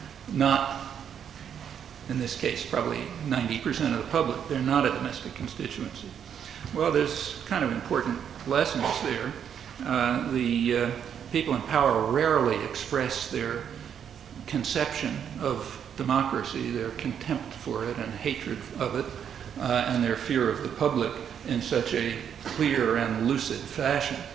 not, in this case, probably 90% of the public. They're not a domestic constituency. Well, there's kind of important lessons there. The people in power rarely express their conception of democracy, their contempt for it and hatred of it, and their fear of the public in such a clear and lucid fashion.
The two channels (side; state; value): left; quieter; 8.4 dB